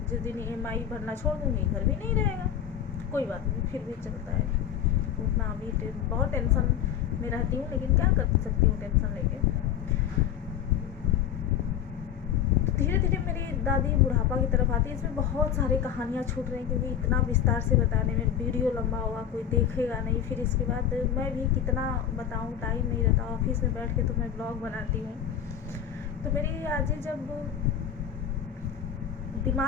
जिस दिन EMI भरना छोड़ दूँगी, घर भी नहीं रहेगा। कोई बात नहीं, फिर भी चलता है। उतना अभी बहुत टेंशन में रहती हूँ, लेकिन क्या कर सकती हूँ टेंशन लेके। धीरे धीरे मेरी दादी बुढ़ापा की तरफ आती है। इसमें बहुत सारी कहानियाँ छूट रही हैं, क्योंकि इतना विस्तार से बताने में वीडियो लंबा होगा, कोई देखेगा नहीं। फिर इसके बाद मैं भी कितना बताऊँ, टाइम नहीं रहता। ऑफिस में बैठ के तो मैं ब्लॉग बनाती हूँ। तो मेरी आजी जब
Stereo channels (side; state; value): right; quieter; 9.2 dB